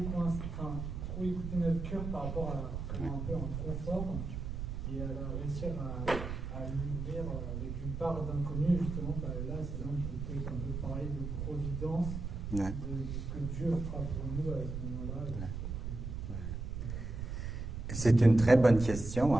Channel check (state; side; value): noise; right; rumble, 5 dB below the sound